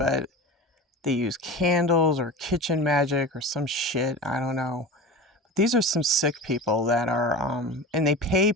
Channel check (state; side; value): normal; both; correlation 0.31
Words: they use candles or kitchen magic or some shit. I don't know. These are some sick people that are, and they pay